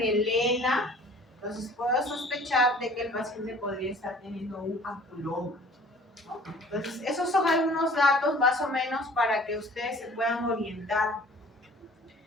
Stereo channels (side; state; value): both; normal; correlation 0.50